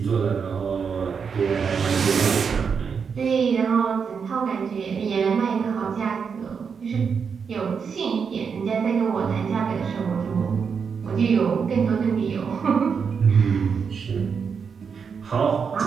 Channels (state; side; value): quieter; left; 6.2 dB